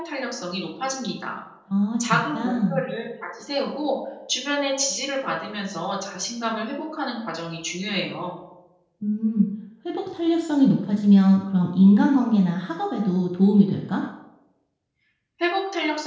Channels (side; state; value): both; identical; correlation 1.00